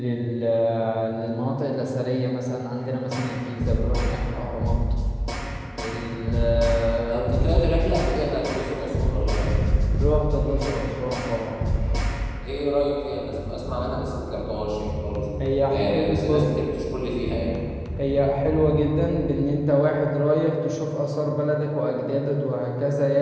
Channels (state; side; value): identical; both; correlation 1.00